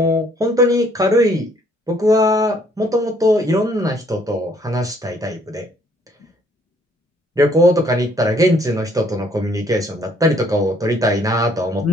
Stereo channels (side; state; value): both; normal; correlation 0.63